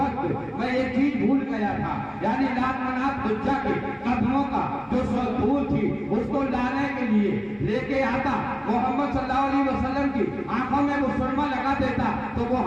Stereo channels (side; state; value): both; identical; correlation 1.00